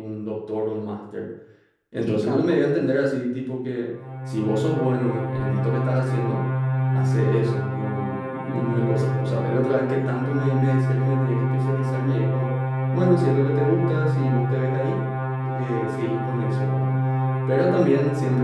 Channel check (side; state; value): both; identical; correlation 1.00